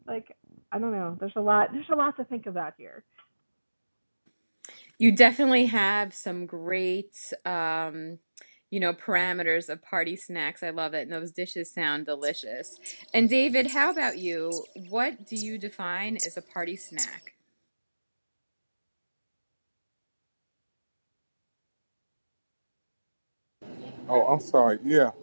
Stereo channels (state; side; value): inverted; both; correlation -1.00